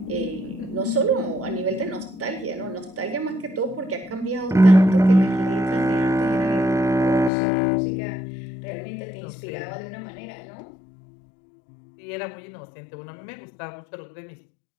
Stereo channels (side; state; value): right; drops out; at 7.3 s